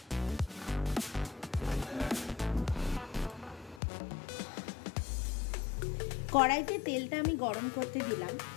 কড়াইতে তেলটা আমি গরম করতে দিলাম।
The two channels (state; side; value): drops out; right; at 3.8 s